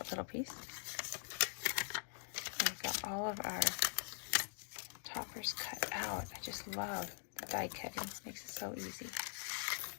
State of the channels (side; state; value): right; silent; digital silence